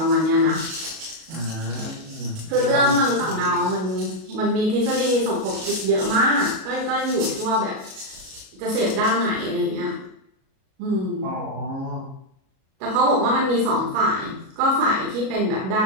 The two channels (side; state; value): left; late; 37 ms